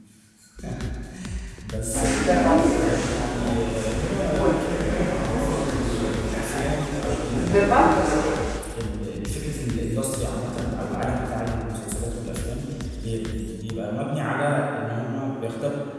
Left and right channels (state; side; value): identical; both; correlation 1.00